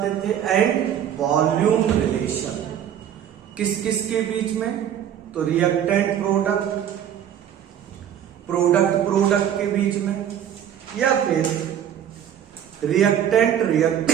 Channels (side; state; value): left; quieter; 9.9 dB